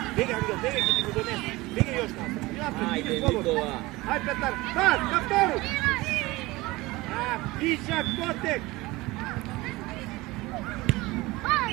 Бегај, Ангел, бегај, ќе ти го донесе. Бегај још напред. Ајде Никола. Ај, Петар, пас, на втору. Вишак, Котек.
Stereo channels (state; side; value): quieter; left; 20.9 dB